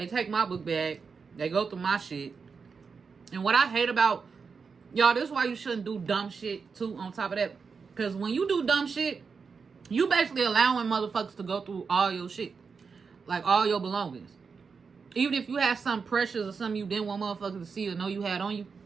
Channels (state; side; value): quieter; left; 5.4 dB